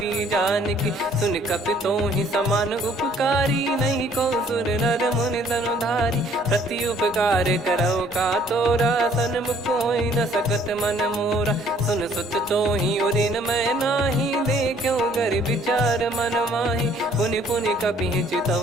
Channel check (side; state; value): both; normal; correlation 0.60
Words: की। सुन कपि तो ही समान उपकारी, नहीं को सुर नर मुनि तनुधारी। प्रति उपकार करौ का तोरा, सन्मुख होई न सकत मन मोरा। सुन सुत तो ही उदिन मैं नाही, देखो गर विचार मन माही। पुनि पुनि कपि